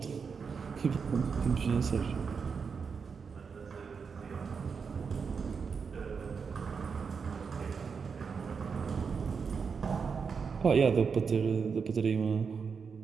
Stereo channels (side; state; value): left; quieter; 5.7 dB